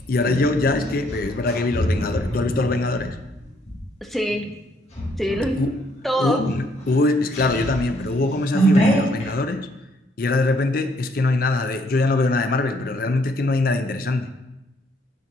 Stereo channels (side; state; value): both; normal; correlation 0.68